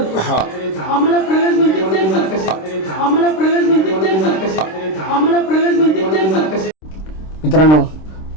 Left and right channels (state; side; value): late; right; 26 ms